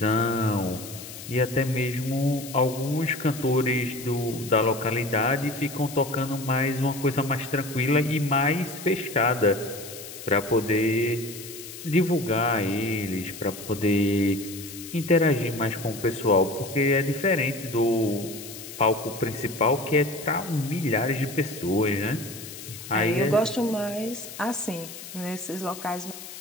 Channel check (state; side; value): noise; left; hiss, 13 dB below the sound